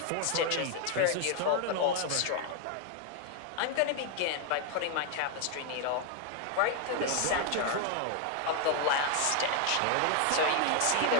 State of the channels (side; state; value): both; different; correlation 0.00